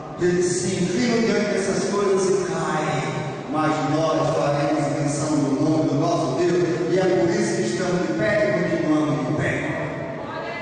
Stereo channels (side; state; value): both; identical; correlation 1.00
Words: Eles se inclinam diante dessas coisas e caem. Mas nós faremos menção do nome do nosso Deus, e é por isso que estamos de pé e continuamos de pé.